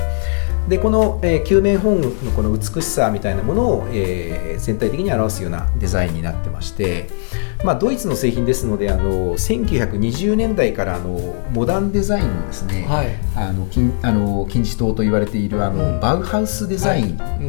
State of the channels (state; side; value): silent; right; 67 dB below the other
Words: でこの、球面ホーンのこの美しさみたいなものを、全体的に表すようなデザインになってまして、ドイツの製品ですので1920年代からモダンデザインのですね、金字塔と言われているバウハウスデザイ